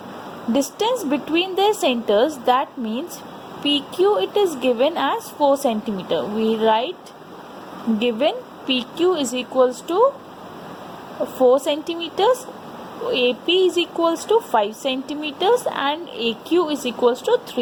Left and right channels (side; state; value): both; identical; correlation 1.00